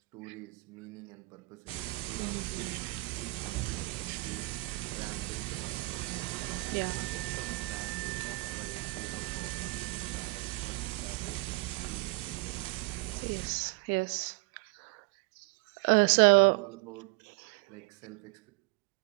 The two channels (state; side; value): quieter; left; 25.2 dB